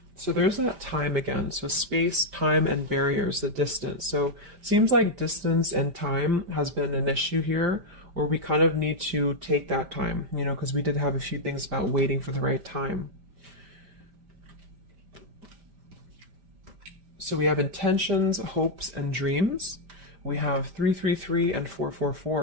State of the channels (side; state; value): left; late; 5.1 ms